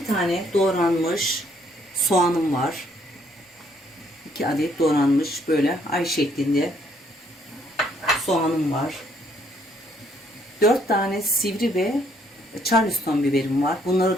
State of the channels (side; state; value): both; normal; correlation 0.67